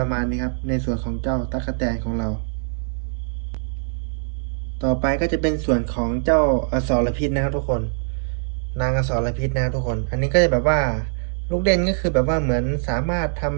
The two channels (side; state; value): left; silent; digital silence